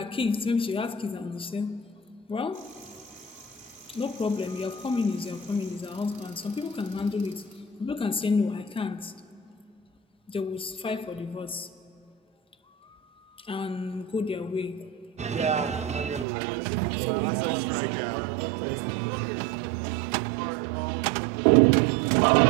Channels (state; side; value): drops out; left; at 16.2 s